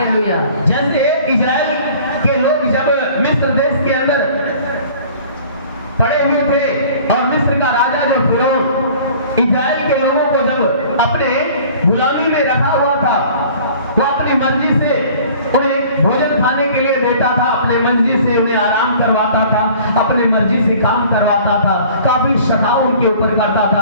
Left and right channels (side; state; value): both; inverted; correlation -0.49